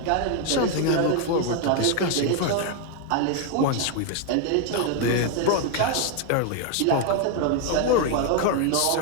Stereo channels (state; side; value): different; both; correlation 0.01